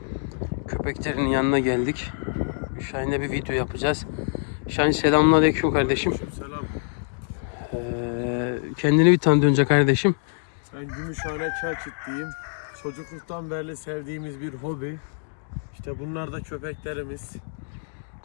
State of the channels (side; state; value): right; silent; digital silence